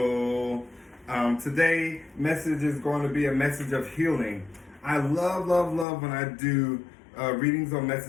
Today, message is going to be a message of healing. I love when I do readings on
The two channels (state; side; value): drops out; right; at 5.9 s